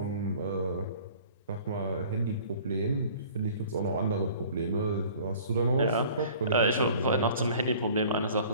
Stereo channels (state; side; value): inverted; both; correlation -0.49